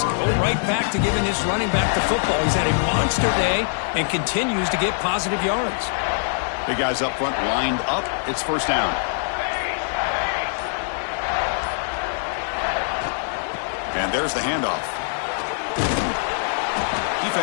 Go right back to giving this running back the football. He's had a monster day and continues to get positive yards. Big guys up front lined up. It's first down. And there's the handoff.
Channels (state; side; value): silent; right; digital silence